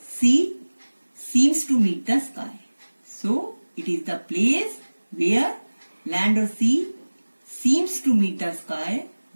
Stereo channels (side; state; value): both; inverted; correlation -1.00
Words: seems to meet the sky. So it is the place where land or sea seems to meet the sky,